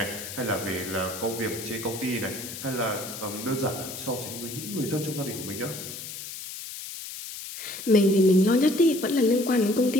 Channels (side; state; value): left; noise; hiss, 10 dB below the sound